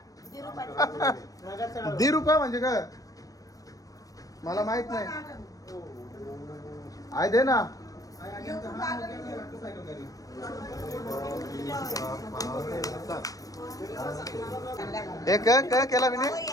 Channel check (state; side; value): late; right; 0.17 ms